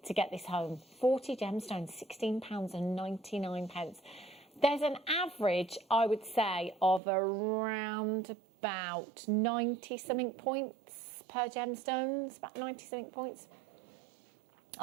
to get this home. 40 gemstones, £16.99. There's an average, I would say, of around about 90-something points per gemstones, about 90-something points.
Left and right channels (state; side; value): drops out; left; at 7.0 s